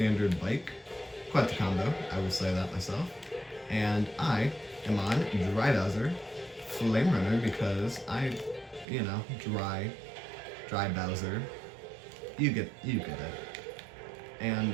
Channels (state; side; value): drops out; left; at 8.8 s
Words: bike. Quite the combo, I will say that myself. And I am on Dry Bowser, Flame Runner, because dry Bowser. You get it. And